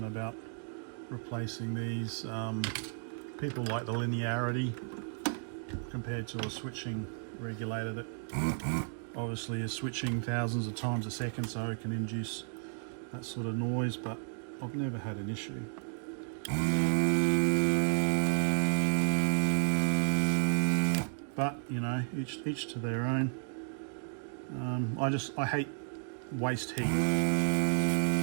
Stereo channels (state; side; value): silent; left; digital silence